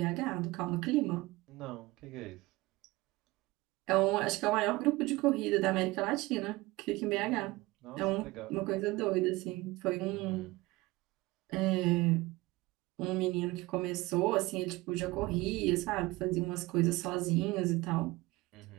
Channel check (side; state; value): left; quieter; 21.0 dB